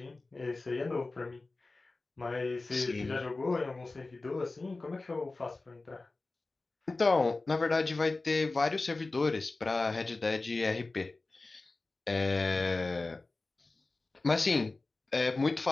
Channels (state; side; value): quieter; right; 3.4 dB